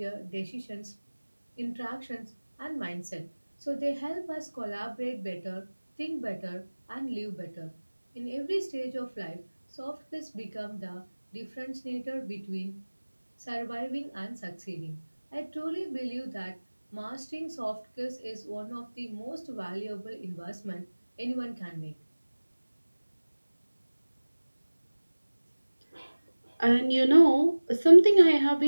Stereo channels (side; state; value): both; inverted; correlation -1.00